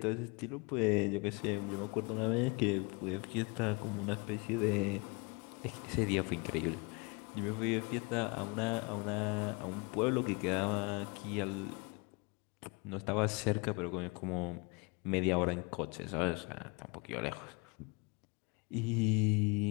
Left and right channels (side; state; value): right; quieter; 29.4 dB